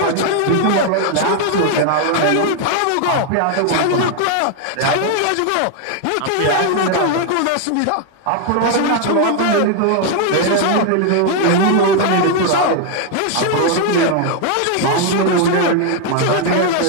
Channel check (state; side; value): different; both; correlation 0.00